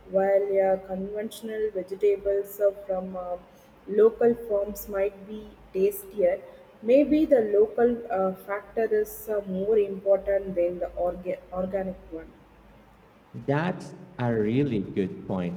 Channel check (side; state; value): both; identical; correlation 1.00